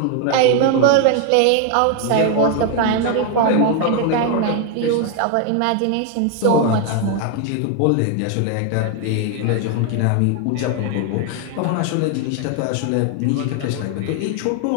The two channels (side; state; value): both; different; correlation 0.01